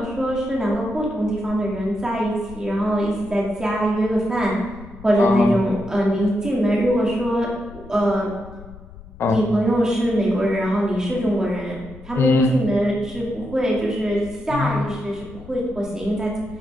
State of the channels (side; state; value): left; noise; rumble, 18 dB below the sound